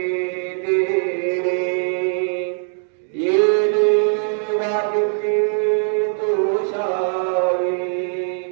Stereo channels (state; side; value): silent; left; digital silence